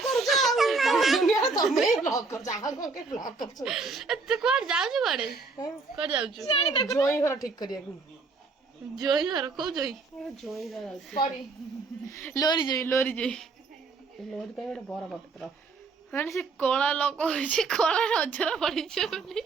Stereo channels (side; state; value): left; quieter; 4.2 dB